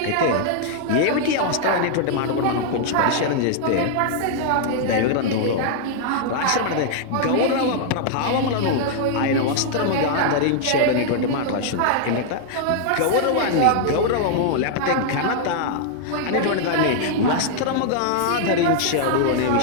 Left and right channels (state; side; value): different; both; correlation -0.01